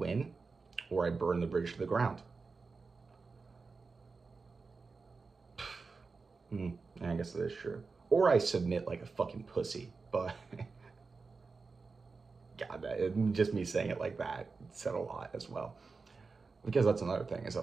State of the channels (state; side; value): quieter; left; 4.4 dB